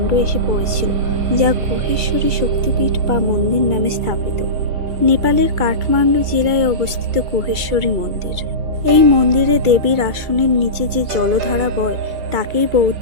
এসে পড়েছিল, যা গুহেশ্বরী শক্তিপীঠ বা মন্দির নামে স্থাপিত। নেপালের কাঠমান্ডু জেলায় অবস্থিত গুহেশ্বরী মন্দির। এই মন্দিরে দেবীর আসনের নিচে যে জলধারা বয় তাকেই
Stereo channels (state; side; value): late; left; 2.3 ms